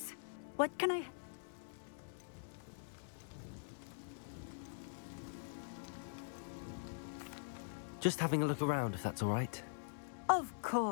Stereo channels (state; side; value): silent; right; digital silence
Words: What can I... Just having a look around, if that's all right. Of